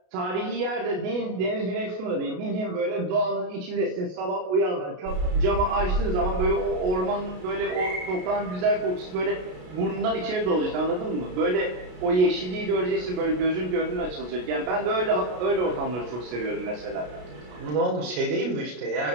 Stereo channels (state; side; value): late; left; 33 ms